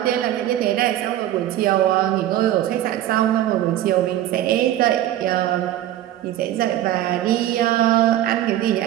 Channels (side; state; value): left; quieter; 13.0 dB